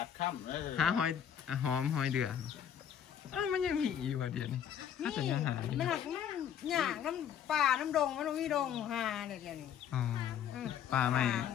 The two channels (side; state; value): right; quieter; 9.2 dB